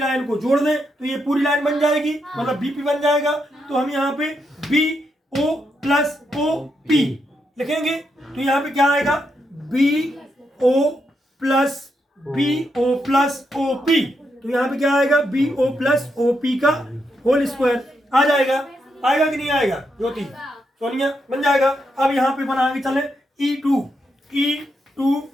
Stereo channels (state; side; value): normal; both; correlation 0.81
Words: को जोड़ दें तो ये पूरी लाइन बन जाएगी, मतलब बीपी बन जाएगा। तो हम यहाँ पे BO प्लस OP लिखेंगे। तो यहाँ पे क्या आएगा BO प्लस OP। तो यहाँ पे क्या आएगा BO प्लस OP का होल स्क्वायर आ जाएगा। आएगा कि नहीं आएगा ज्योति, सोनिया, बन जाएगा। अब यहाँ पे बना आगे चले E2